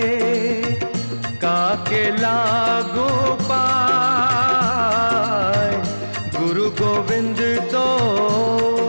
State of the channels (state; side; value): inverted; both; correlation -1.00